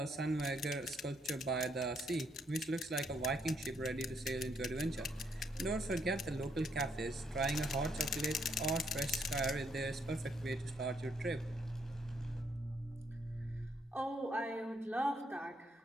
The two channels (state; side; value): normal; both; correlation 0.73